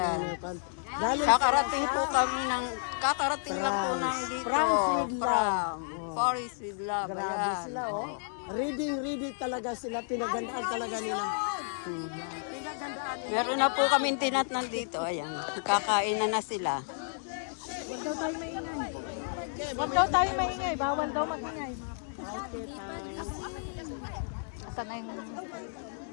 Galing Kakarating lang po ng dito. From Paris with Love. Ayan. sila, oh. Ready talaga sila. Pinagandaan talaga nila. Yan. Pinagandaan nila. Meron na po kami tinatnan dito. Ayan. Kakain na sila. Huwag daw tayo maingay. Huwag daw tayo maingay. Bawal daw magingay.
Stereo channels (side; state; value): right; silent; digital silence